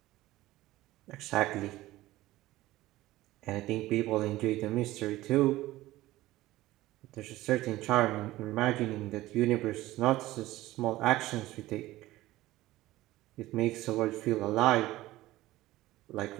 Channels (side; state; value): left; quieter; 16.9 dB